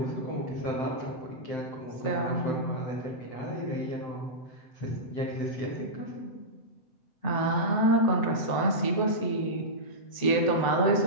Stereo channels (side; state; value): right; late; 7.9 ms